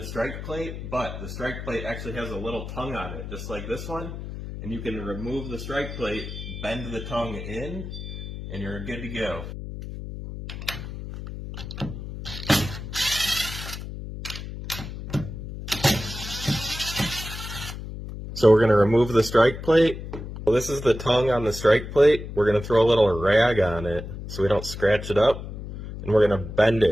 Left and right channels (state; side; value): noise; left; hum, 9 dB below the sound